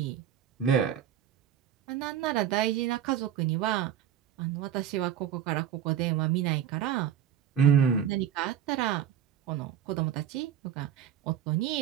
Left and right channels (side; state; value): left; quieter; 9.6 dB